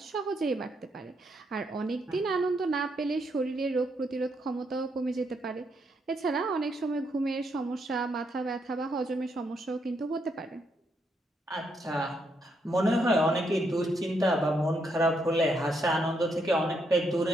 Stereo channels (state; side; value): normal; both; correlation 0.77